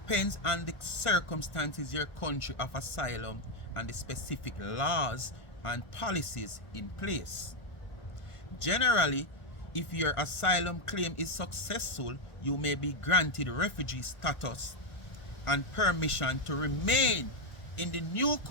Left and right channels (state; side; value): late; right; 1.5 ms